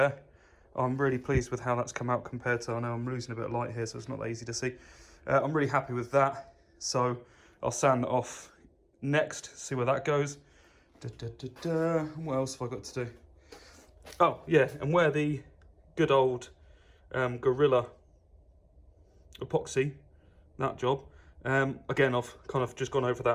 I'm really pleased with how that's come out compared to, I know I'm losing a bit of light here, so it's not that easy to see. I'm really happy with that, so I'll sand that off next, see where that goes. What else have I got to do? Oh yeah, and where the good old Gorilla epoxy, that job, again I've kind of just gone over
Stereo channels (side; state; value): both; identical; correlation 1.00